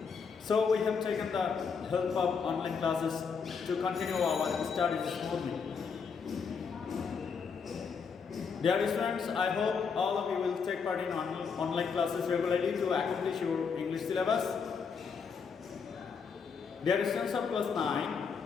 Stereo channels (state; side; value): quieter; right; 5.8 dB